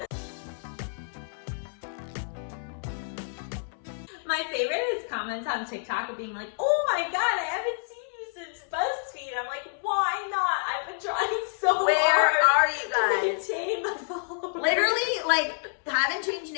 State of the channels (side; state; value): right; silent; 59 dB below the other